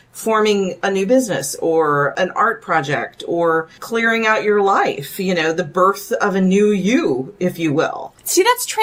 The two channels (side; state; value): both; identical; correlation 1.00